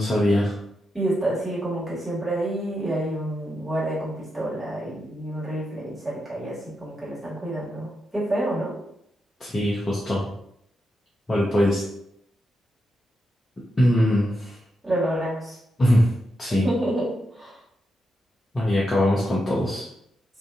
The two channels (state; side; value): normal; both; correlation 0.86